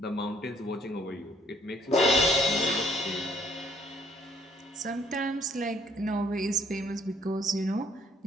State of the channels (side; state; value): both; normal; correlation 0.62